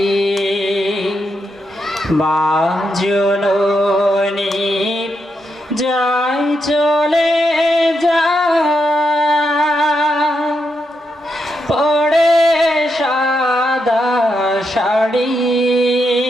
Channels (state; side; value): normal; both; correlation 0.83